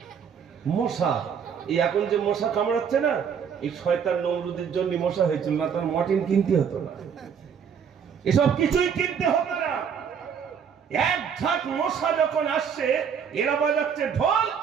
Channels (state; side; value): quieter; left; 7.2 dB